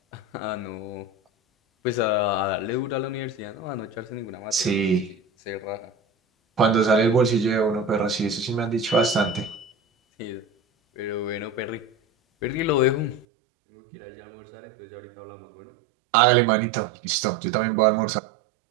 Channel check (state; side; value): drops out; left; at 13.2 s